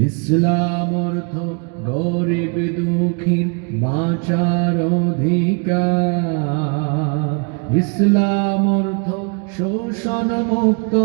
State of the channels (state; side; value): quieter; left; 36.8 dB